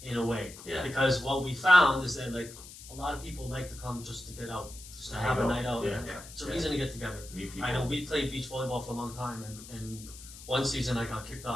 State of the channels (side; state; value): left; noise; hiss, 16 dB below the sound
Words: in a way. Yeah. Because what we found is that like a lot of people like to come just to get out, just to have a night out. It's a reason to get together. I know we played beach volleyball for a long time, and one season I got kicked